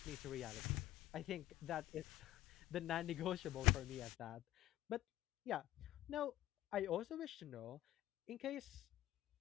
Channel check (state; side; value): quieter; right; 14.6 dB